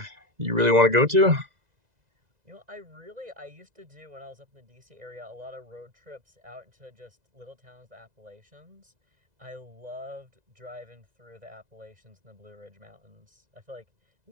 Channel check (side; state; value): left; late; 2.0 ms